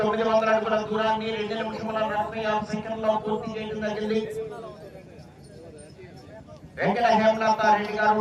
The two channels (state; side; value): identical; both; correlation 1.00